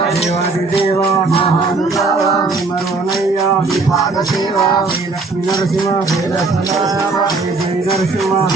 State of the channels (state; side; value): quieter; left; 3.8 dB